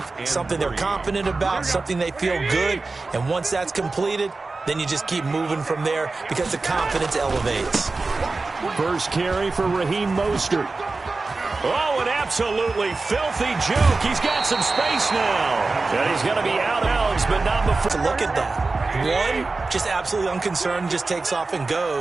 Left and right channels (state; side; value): quieter; left; 3.7 dB